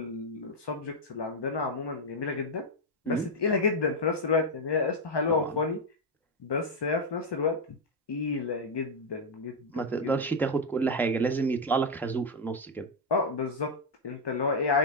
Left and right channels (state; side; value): normal; both; correlation 0.02